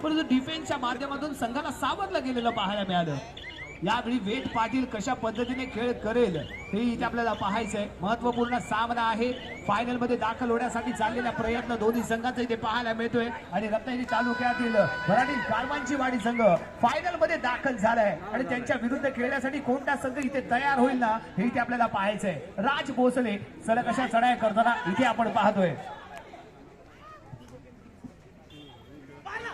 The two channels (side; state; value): both; identical; correlation 1.00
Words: परंतु डिफेन्सच्या माध्यमातून संघाला सावरलं गेलेलं पाहायला मिळालं. यावेळी वेद पाटील कशा पद्धतीने खेळ करेल हे इथे आपल्याला पाहायचंय. महत्वपूर्ण सामना आहे. फायनल मध्ये दाखल होण्यासाठी चाललेला प्रयत्न दोन्ही संघांचा इथे पाहायला मिळतोय आणि रत्नागिरी तालुक्यातील मराठी कारवांची वाडी संघ फायनल मध्ये दाखल झालाय आणि त्यांच्या विरुद्ध खेळण्यासाठी कोणता संघ इथे तयार होईल ना हे इथे आपल्याला पाहायचंय. राज भोसले सलग अशा चढाया करताना इथे आपण पाहतोय.